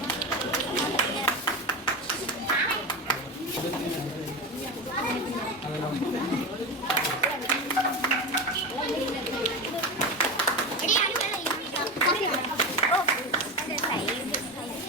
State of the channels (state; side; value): normal; both; correlation 0.21